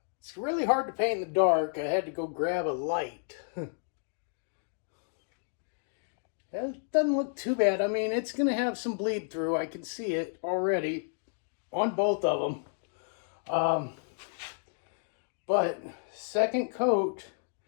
It's really hard to paint in the dark. I had to go grab a light. It doesn't look too bad. I mean, it's going to have some bleed through. I can see it already on both of them. But second coat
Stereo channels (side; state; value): right; silent; digital silence